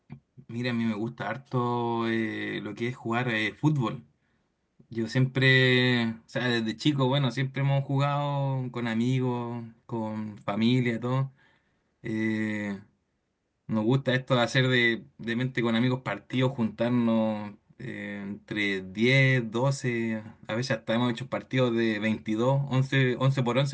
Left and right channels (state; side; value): identical; both; correlation 1.00